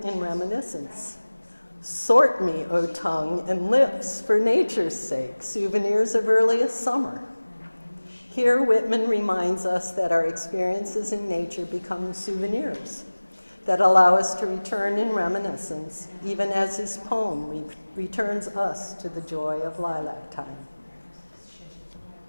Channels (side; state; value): both; inverted; correlation -1.00